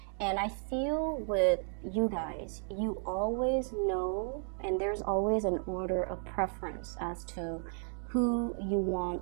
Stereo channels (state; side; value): silent; left; 55 dB below the other